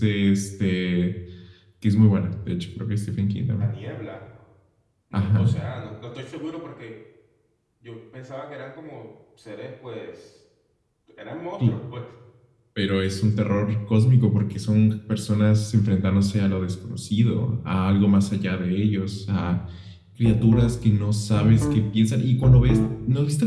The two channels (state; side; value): identical; both; correlation 1.00